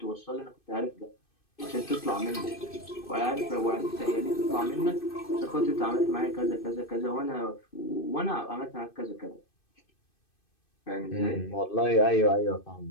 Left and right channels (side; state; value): right; late; 2.6 ms